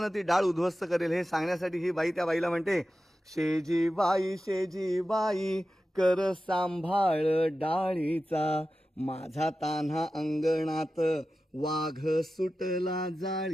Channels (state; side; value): normal; both; correlation 0.93